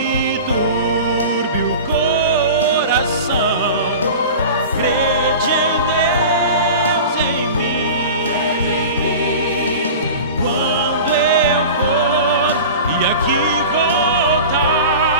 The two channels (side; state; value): both; inverted; correlation -0.34